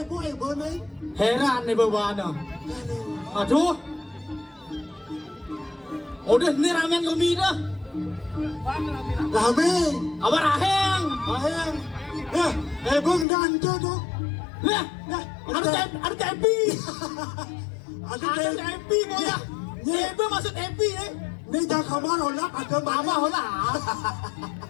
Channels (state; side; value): drops out; right; at 13.2 s